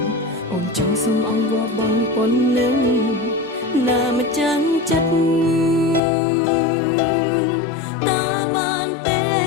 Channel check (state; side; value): drops out; right; at 6.0 s